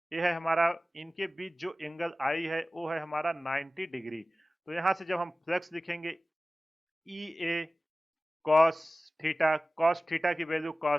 ये है हमारा, इनके बीच जो एंगल आई है वो है हमारा 90 डिग्री। तो यहाँ से जब हम फ्लक्स लिखेंगे, ई ए कॉस थीटा की वैल्यू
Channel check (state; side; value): normal; both; correlation 0.97